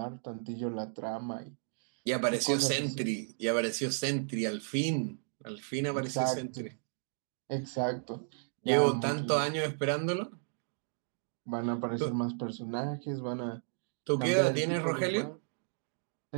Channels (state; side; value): silent; left; digital silence